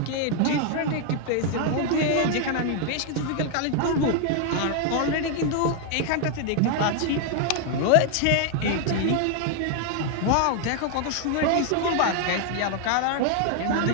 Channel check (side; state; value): both; different; correlation 0.00